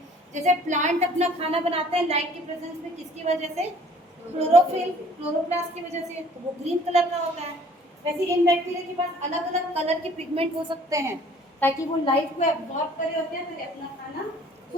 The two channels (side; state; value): both; normal; correlation 0.54